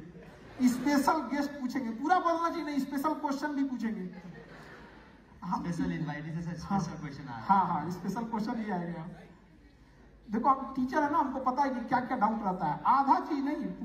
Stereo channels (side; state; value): both; identical; correlation 1.00